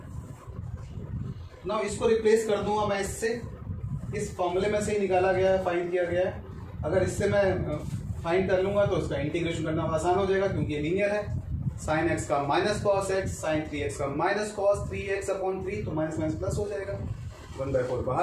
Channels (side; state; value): both; identical; correlation 1.00